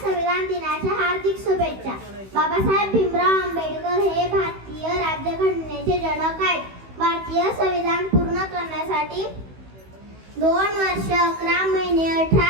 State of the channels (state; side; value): late; left; 16 ms